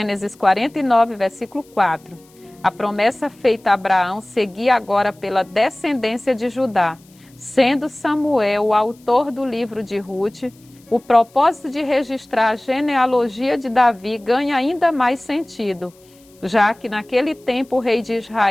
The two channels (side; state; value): left; noise; hiss, 30 dB below the sound